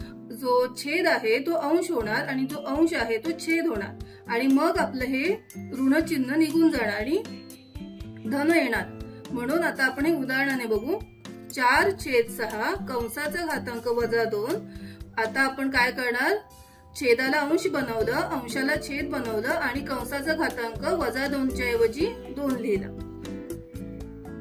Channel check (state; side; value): identical; both; correlation 1.00